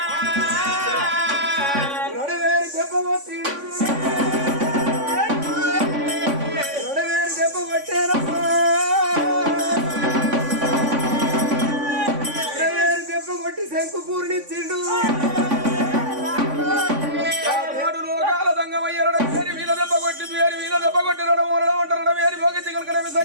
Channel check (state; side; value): late; left; 3.5 ms